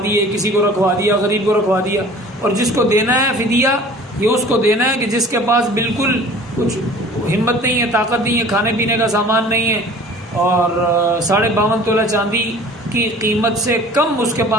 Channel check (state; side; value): normal; both; correlation 0.46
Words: دیے، کسی کو رکھوا دیا، غریب کو رکھوا دیا. اور جس کو دینا ہے فدیہ، یہ اس کو دینا ہے کہ جس کے پاس بالکل کچھ ہمت نہیں ہے، طاقت نہیں ہے، کھانے پینے کا سامان نہیں ہے، اور 52.5 تولہ چاندی کی قیمت سے کم اس کے